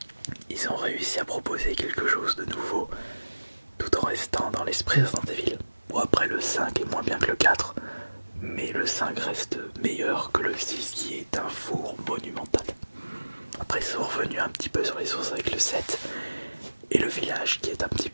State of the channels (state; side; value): inverted; both; correlation -1.00